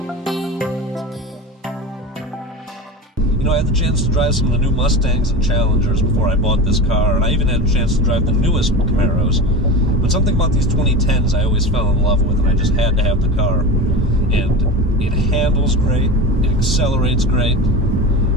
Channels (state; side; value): normal; both; correlation 0.28